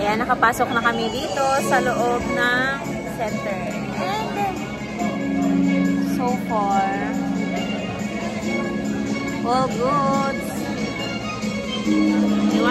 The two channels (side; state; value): both; identical; correlation 1.00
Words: nakapasok na kami dito sa loob ng center. And so far, all good. May